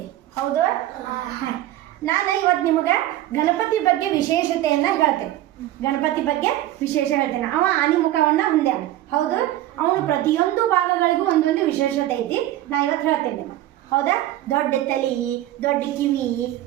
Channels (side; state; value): left; quieter; 14.2 dB